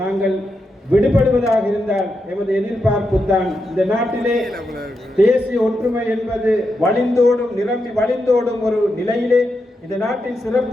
நாங்கள் விடுபடுவதாக இருந்தால் எமது எதிர்பார்ப்பு தான் இந்த நாட்டிலே தேசிய ஒற்றுமை என்பது வழிந்தோடும், நிரம்பி வழிந்தோடும் ஒரு நிலையிலே இந்த நாட்டில்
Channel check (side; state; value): both; normal; correlation 0.85